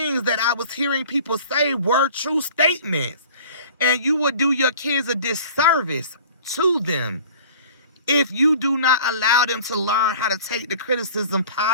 that I was hearing people say were true statements. And you would do your kids a disservice to them if you do not allow them to learn how to take the criticism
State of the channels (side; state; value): both; inverted; correlation -0.45